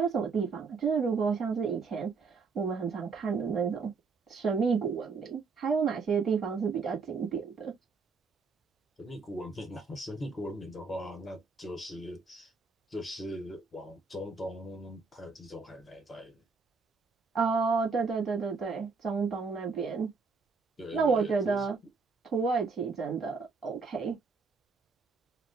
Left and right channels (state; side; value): quieter; left; 4.7 dB